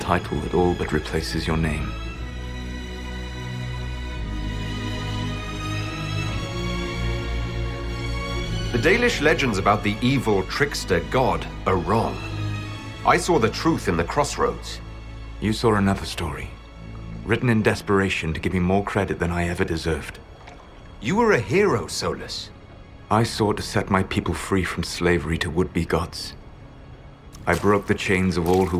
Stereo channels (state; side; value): identical; both; correlation 1.00